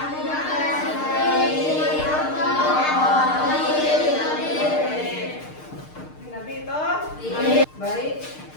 Nabi itu? Baik,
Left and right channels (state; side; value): late; right; 6.6 ms